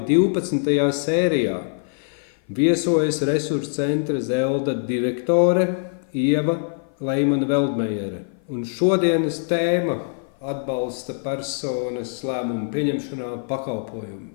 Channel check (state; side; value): silent; right; 55 dB below the other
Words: 12. sērijā. Viesojas Resursu centra Zelda direktore Ieva Leimane-Veldmejere. Un šodienas tēma atbalsta personas lēmumu pieņemšanā